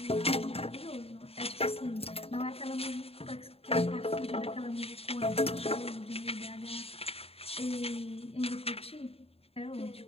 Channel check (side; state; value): right; late; 0.29 ms